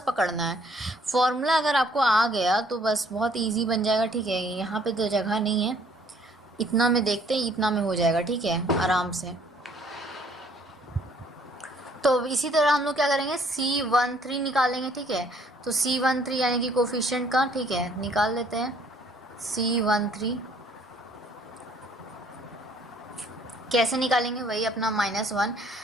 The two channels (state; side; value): normal; both; correlation 0.61